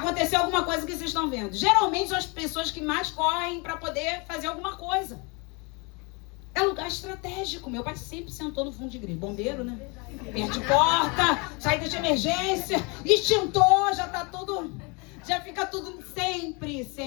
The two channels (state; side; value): quieter; right; 30.3 dB